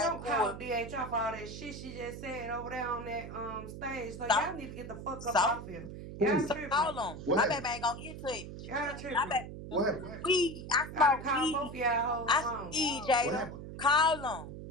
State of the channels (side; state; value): right; noise; hum, 10 dB below the sound